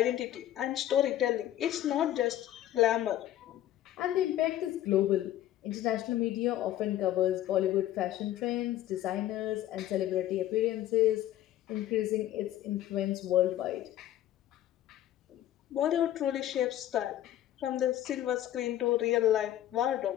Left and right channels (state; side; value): quieter; right; 12.8 dB